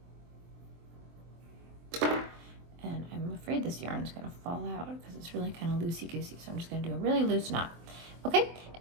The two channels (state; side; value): late; left; 24 ms